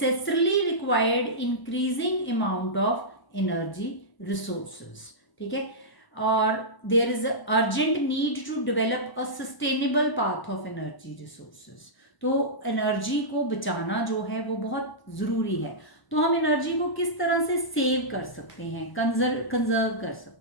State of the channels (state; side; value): late; right; 1.0 ms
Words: required increasing amount of energy resources. ठीक है, और there is urgent need to develop a sustainable path of energy resources. तो एनर्जी को बचाना जो है वो बहुत ज़रूरी है. तो हम एनर्जी को किस तरह से सेव कर सकते हैं, कंजर्व कर